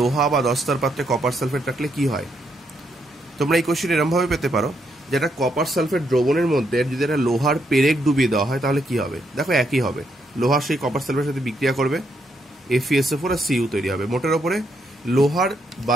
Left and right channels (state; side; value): normal; both; correlation 0.77